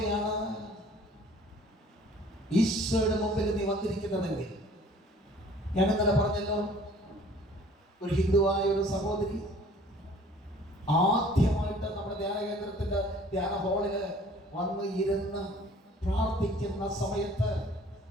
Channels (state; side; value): normal; both; correlation 0.53